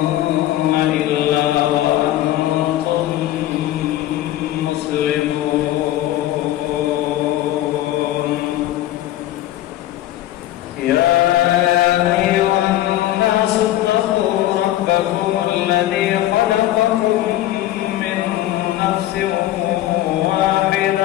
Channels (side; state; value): right; quieter; 14.1 dB